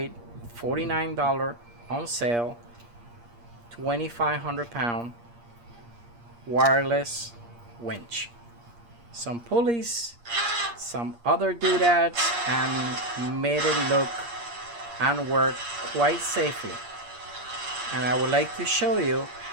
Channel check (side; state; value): left; late; 8.5 ms